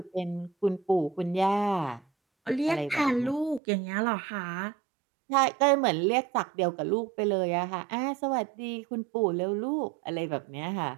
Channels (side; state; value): left; drops out; at 3.6 s